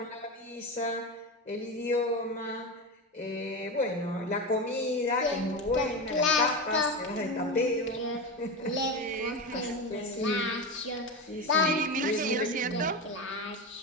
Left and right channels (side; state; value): both; normal; correlation 0.20